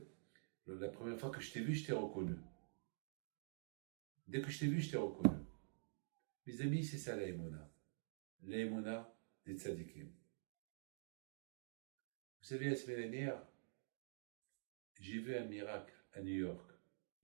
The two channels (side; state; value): left; silent; digital silence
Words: la première fois que je t'ai vu, je t'ai reconnu. Dès que je t'ai vu, je t'ai reconnu. Mes amis, c'est ça la Emouna. La Emouna des tzadikim. Vous savez, la semaine dernière, j'ai vu un miracle à New York.